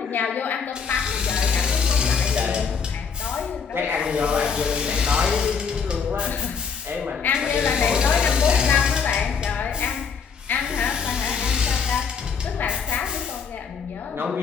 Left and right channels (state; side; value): quieter; right; 6.1 dB